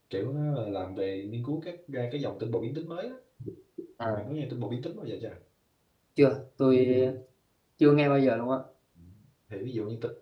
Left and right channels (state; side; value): identical; both; correlation 1.00